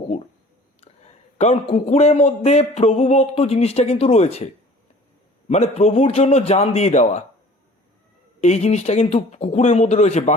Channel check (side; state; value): both; normal; correlation 0.48